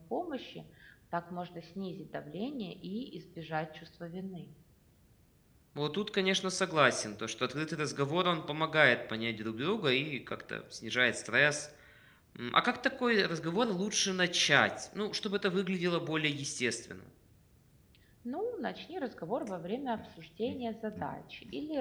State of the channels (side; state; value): both; identical; correlation 1.00